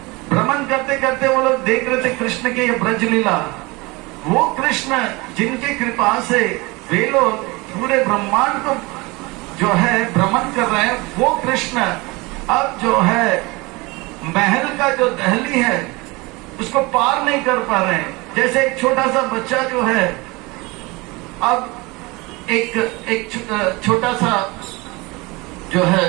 भ्रमण करते करते वो लोग देख रहे थे कृष्ण के ये ब्रज लीला। वो कृष्ण जिनकी कृपा से वे लोग पूरे ब्रह्मांड को जो है भ्रमण कर रहे हैं, वो कृष्ण अब जो है महल का जो दहली है उसको पार नहीं कर पा रहे हैं। जैसे एक छोटा सा बच्चा जो है, अब एक छोटा सा जो है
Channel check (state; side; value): quieter; left; 24.4 dB